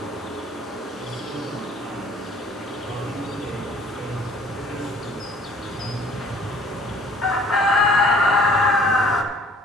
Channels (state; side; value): normal; both; correlation 0.55